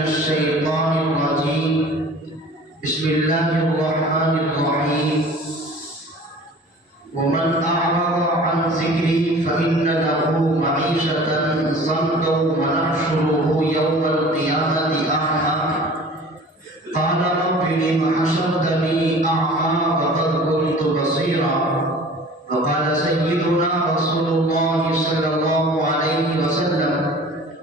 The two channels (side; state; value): both; normal; correlation 0.44